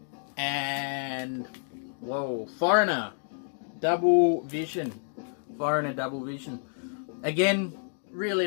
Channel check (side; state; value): right; silent; digital silence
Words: And, whoa, Foreigner, Double Vision. Foreigner, Double Vision. Again, really